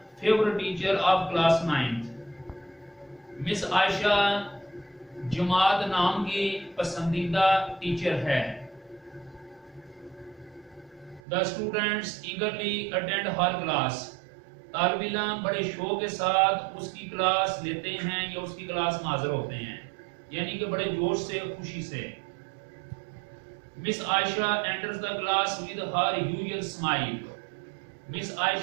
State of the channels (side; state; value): left; drops out; at 11.2 s